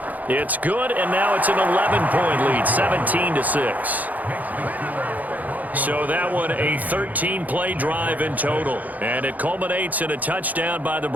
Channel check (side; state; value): left; late; 0.079 ms